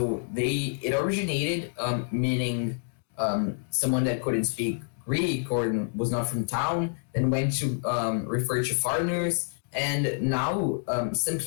it originated meaning someone that couldn't speak Greek or was not from town, then went to refer to foreigners, and now some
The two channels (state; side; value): silent; right; digital silence